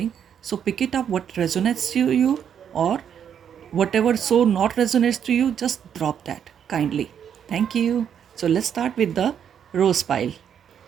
So pick it up what resonates to you, or whatever so not resonates to you, just drop that kindly. Thank you. So let's start with the rose pile.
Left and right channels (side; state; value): left; quieter; 8.5 dB